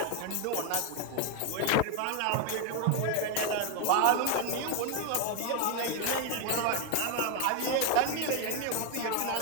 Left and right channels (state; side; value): different; both; correlation 0.01